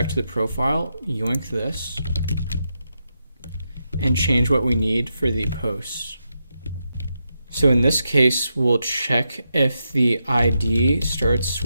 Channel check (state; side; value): inverted; both; correlation -0.85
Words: to the profile, yoink this, and change what we need for the post. So in this case, we'll check if the ID starts